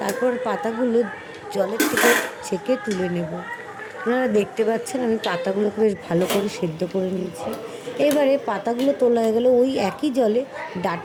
তারপর পাতাগুলো জলের থেকে ছেঁকে তুলে নেব। আপনারা দেখতে পাচ্ছেন আমি পাতাগুলোকে বেশ ভালো করে সেদ্ধ করে নিয়েছি। এবারে পাতাগুলো তোলা হয়ে গেলে ওই একই জলে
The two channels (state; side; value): identical; both; correlation 1.00